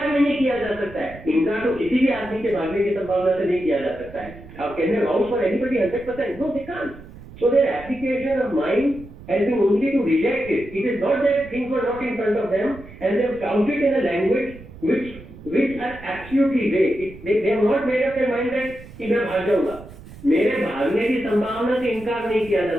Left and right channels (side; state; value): right; noise; rumble, 17 dB below the sound